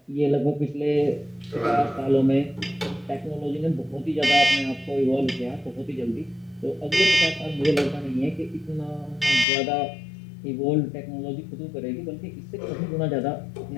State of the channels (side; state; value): right; drops out; at 9.5 s